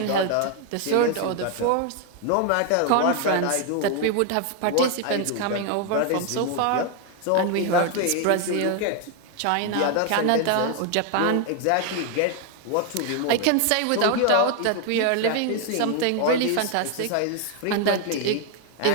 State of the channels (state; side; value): different; both; correlation 0.01